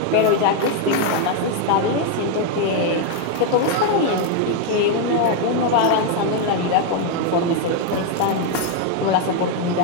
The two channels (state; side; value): different; both; correlation 0.01